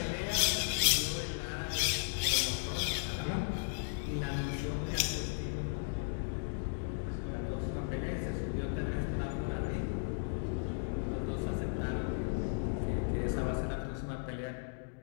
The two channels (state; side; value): silent; right; digital silence